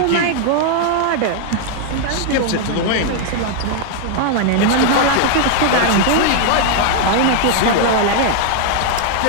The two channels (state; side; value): different; both; correlation 0.00